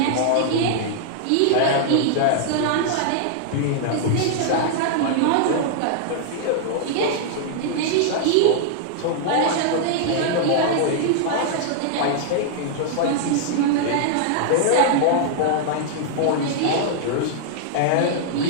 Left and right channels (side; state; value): both; different; correlation -0.01